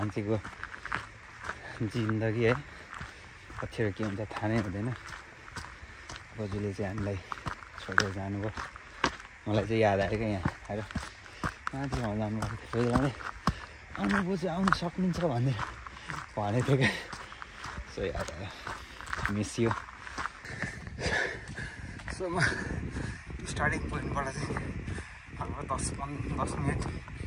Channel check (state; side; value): identical; both; correlation 1.00